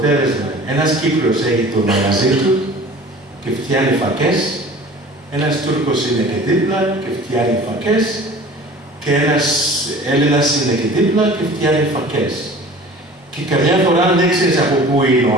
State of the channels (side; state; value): both; normal; correlation 0.43